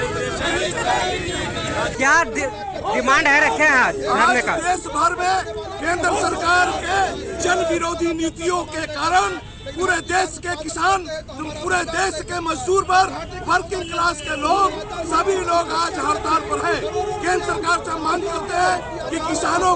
क्या डिमांड है रखे हैं आज धरने का? देश भर में केंद्र सरकार के जन विरोधी नीतियों के कारण पूरे देश के किसान, पूरे देश के मजदूर वर्ग, वर्किंग क्लास के लोग, सभी लोग आज हड़ताल पर हैं। केंद्र सरकार से मांग करते हैं कि किसानों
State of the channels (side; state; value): both; identical; correlation 1.00